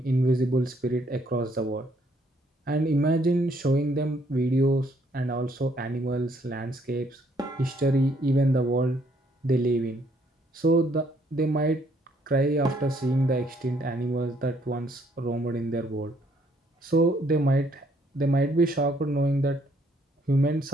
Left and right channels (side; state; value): both; normal; correlation 0.68